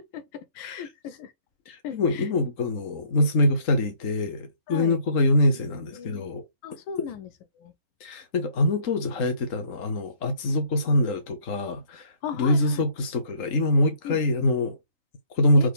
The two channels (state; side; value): late; right; 3.8 ms